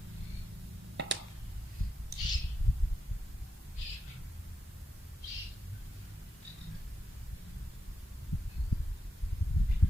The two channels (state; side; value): normal; both; correlation 0.86